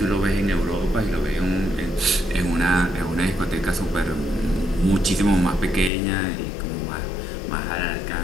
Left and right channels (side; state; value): right; drops out; at 5.9 s